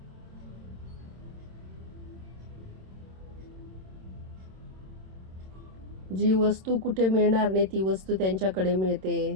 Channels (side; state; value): left; late; 27 ms